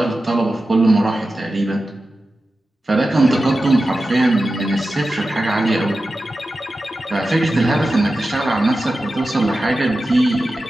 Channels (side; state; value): both; normal; correlation 0.93